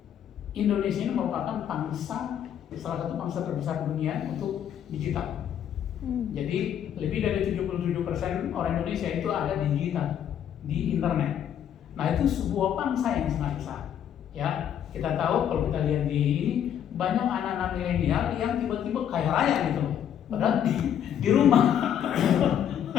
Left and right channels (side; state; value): right; quieter; 9.5 dB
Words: Indonesia ini merupakan salah satu bangsa terbesar dunia untuk digital. Jadi lebih dari 77% orang Indonesia itu ada di digital, di internet. Nah itu sebuah bangsa yang sangat besar. Ya kita tahu kalau kita lihat di banyak anak-anak milenial yang tiba-tiba kaya raya gitu, padahal di rumah.